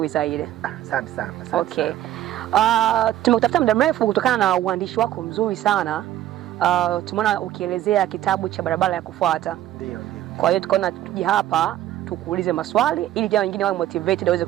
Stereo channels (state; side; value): quieter; left; 13.0 dB